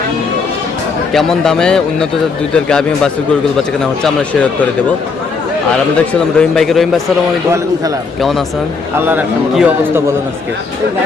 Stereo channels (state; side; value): quieter; right; 4.7 dB